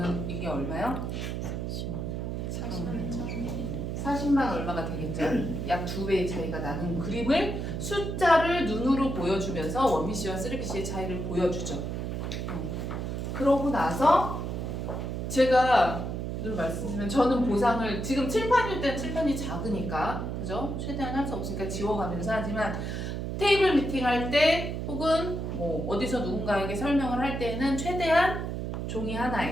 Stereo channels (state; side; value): noise; right; hum, 3 dB below the sound